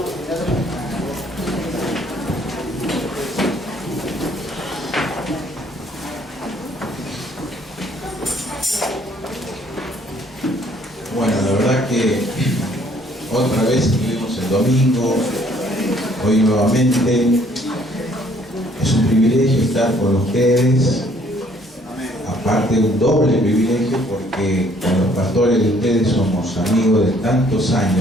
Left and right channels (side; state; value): both; normal; correlation 0.62